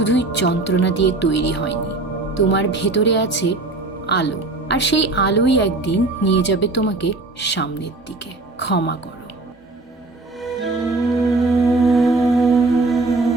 যন্ত্রণা দিয়ে তৈরি হয়নি, তোমার ভেতরে আছে আলো, আর সেই আলোই একদিন নিয়ে যাবে তোমাকে সামনের দিকে। ক্ষমা করো।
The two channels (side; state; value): left; quieter; 3.2 dB